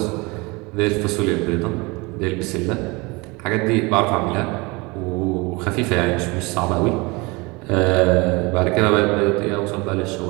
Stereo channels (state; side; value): quieter; left; 25.6 dB